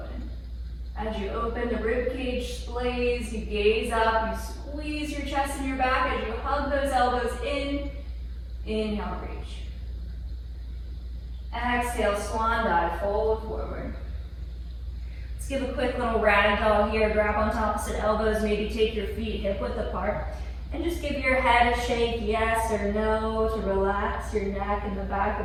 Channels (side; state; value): both; identical; correlation 1.00